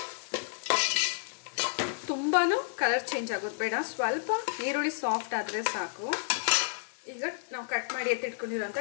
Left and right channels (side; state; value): right; silent; digital silence